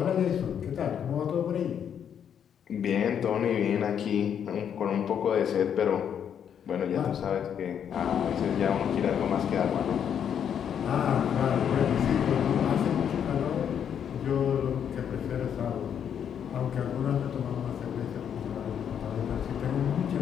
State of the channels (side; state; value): right; quieter; 8.5 dB